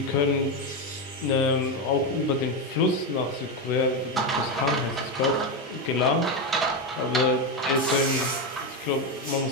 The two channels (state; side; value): normal; both; correlation 0.11